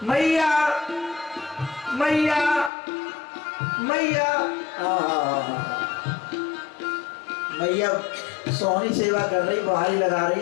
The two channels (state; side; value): drops out; right; at 2.7 s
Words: मैया मैया मैया। मैया सोहनी सेवा कर रही, बहारी लगा रही